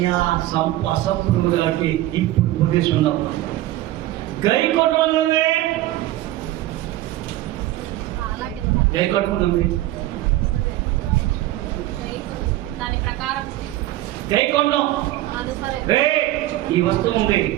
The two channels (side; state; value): left; quieter; 15.7 dB